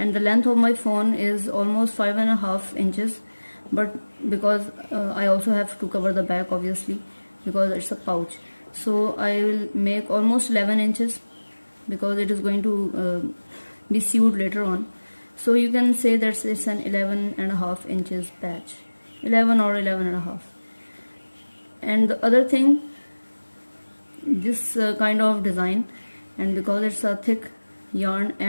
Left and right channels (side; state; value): both; inverted; correlation -1.00